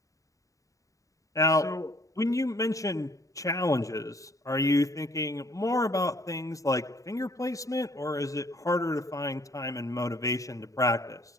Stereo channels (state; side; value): late; right; 0.16 ms